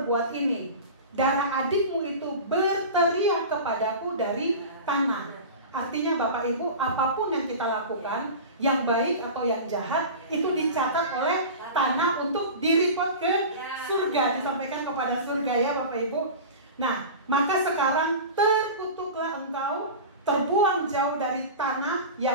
ini? Darah adikmu itu berteriak kepadaku dari tanah." Artinya Bapak Ibu, apapun yang kita lakukan, yang baik atau yang jahat, itu dicatat oleh tanah untuk direport ke surga, disampaikan kepada surga ya Bapak Ibu. Nah, maka sekarang terkutuklah engkau, terbuang jauh dari tanah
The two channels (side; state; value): both; inverted; correlation -0.32